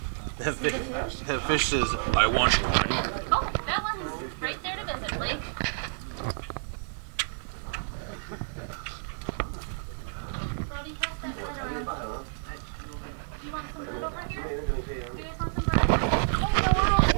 That fish says, I want one. Oh, that one's right there to visit, Blake. Brody, pass that bread around. You want some bread over here? You guys want some bread? Oh, no, we're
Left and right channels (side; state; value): left; silent; digital silence